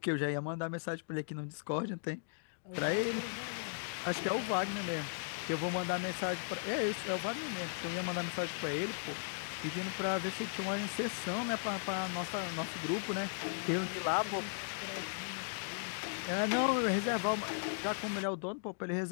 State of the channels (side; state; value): right; silent; digital silence